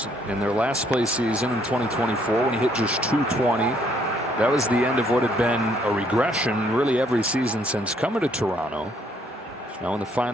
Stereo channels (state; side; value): normal; both; correlation 0.67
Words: in their last place season in 2024 when he hit just 220. That was the end of what had been a regression really every season since coming to Toronto. Now in the